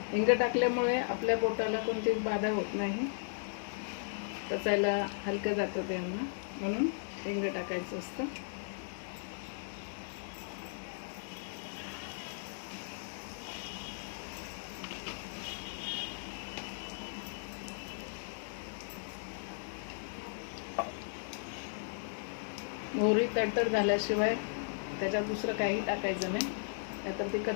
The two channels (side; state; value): right; silent; digital silence